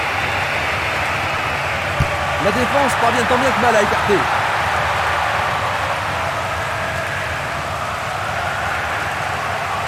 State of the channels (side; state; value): both; identical; correlation 1.00